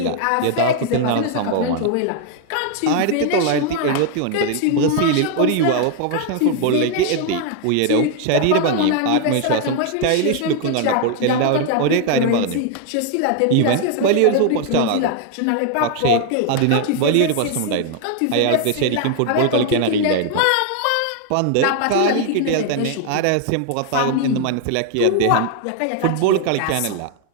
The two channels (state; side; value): different; both; correlation 0.00